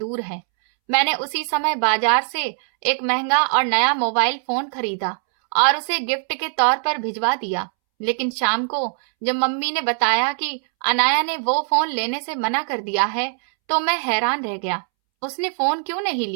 है। मैंने उसी समय बाजार से एक महंगा और नया मोबाइल फोन खरीदा और उसे गिफ्ट के तौर पर भिजवा दिया। लेकिन शाम को जब मम्मी ने बताया कि अनाया ने वो फोन लेने से मना कर दिया है तो मैं हैरान रह गया। उसने फोन क्यों नहीं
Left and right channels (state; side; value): silent; left; 65 dB below the other